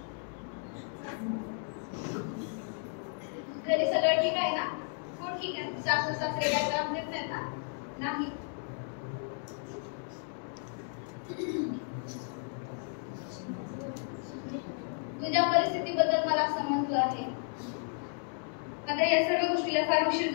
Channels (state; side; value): silent; right; 55 dB below the other